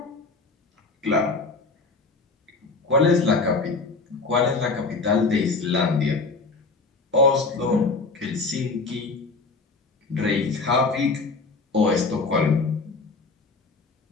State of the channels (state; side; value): quieter; right; 3.9 dB